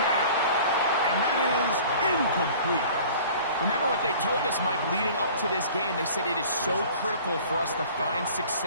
And that is incomplete. Remember what they told us, Mike, leading up to this game. They said it is so critical for us to find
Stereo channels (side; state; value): both; inverted; correlation -0.46